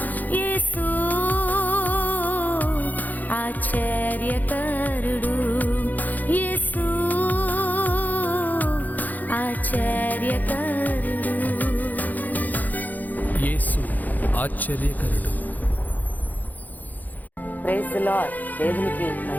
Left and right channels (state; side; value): late; right; 0.082 ms